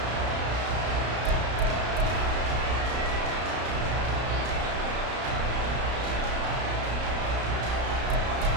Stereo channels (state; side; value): late; left; 33 ms